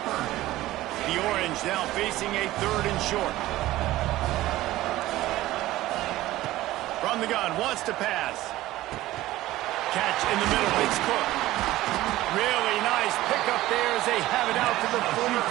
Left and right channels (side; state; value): left; quieter; 16.2 dB